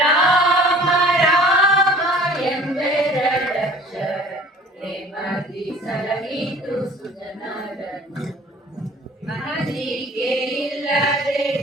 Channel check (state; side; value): normal; both; correlation 0.48